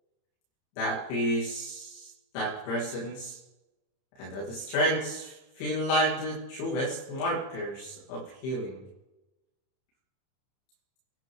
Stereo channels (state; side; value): late; right; 31 ms